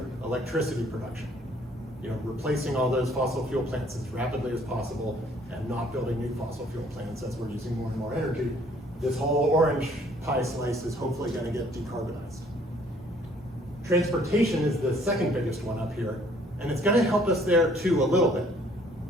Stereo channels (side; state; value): both; normal; correlation 0.60